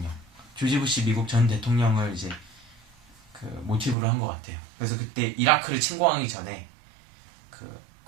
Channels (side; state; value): left; drops out; at 4.0 s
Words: 미국 전 대통령을 이제 그 모티브로 한 것 같아요. 그래서 그때 이라크를 침공하기 전에